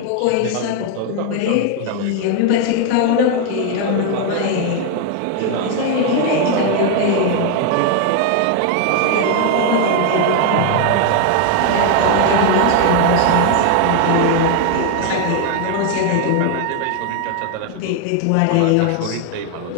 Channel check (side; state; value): both; different; correlation 0.00